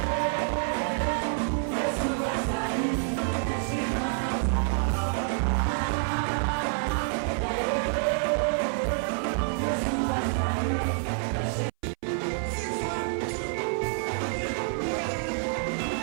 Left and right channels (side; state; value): left; silent; 58 dB below the other